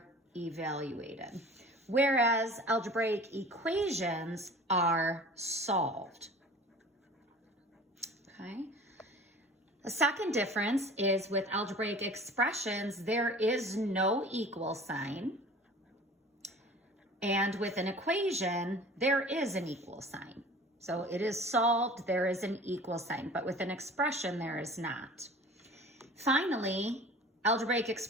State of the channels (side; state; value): both; normal; correlation 0.43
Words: evaluated, whereas algebraic equations are solved. Okay. The second difference is with algebraic expressions, there is no equal sign. And with an equation, there is an equal sign. So it is solved, there is an equal sign, but with an expression, there is not. Finally, algebraic